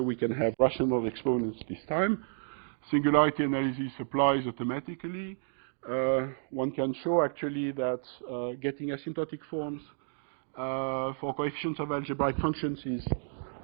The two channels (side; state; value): left; silent; digital silence